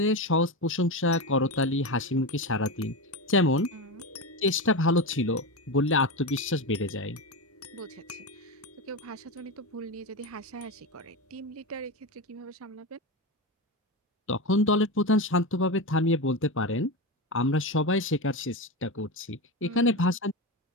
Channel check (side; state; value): both; normal; correlation 0.18